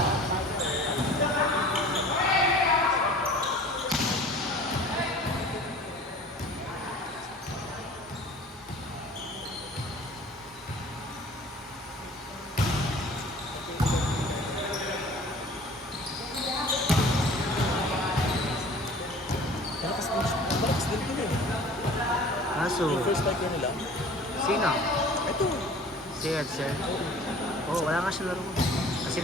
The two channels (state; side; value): normal; both; correlation 0.46